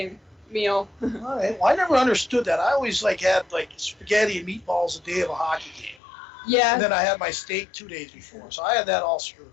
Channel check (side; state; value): right; drops out; at 6.0 s